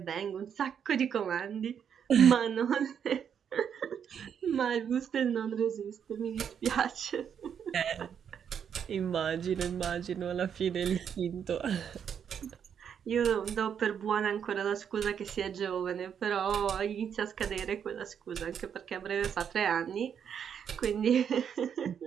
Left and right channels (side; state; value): left; quieter; 8.0 dB